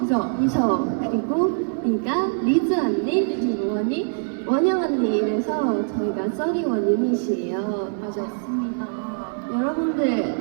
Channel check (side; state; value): left; silent; 63 dB below the other